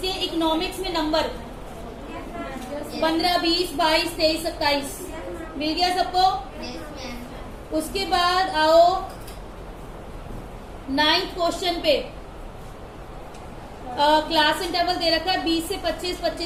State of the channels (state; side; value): identical; both; correlation 1.00